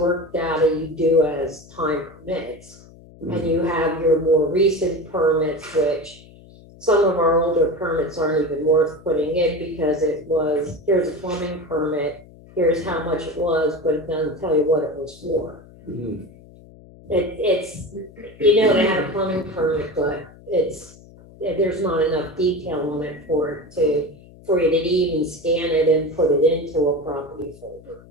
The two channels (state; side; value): noise; left; hum, 22 dB below the sound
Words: data you do as time permits. And you have your more recent permits, which some of our older permits aren't even worth putting in, because it was, here's a plumbing permit, here's how much it was, but it doesn't tell you what it was for. Mhm. It's, you know, they had a plumbing permit, but there's not enough detail on it for you to even scan it and put it into a property folder.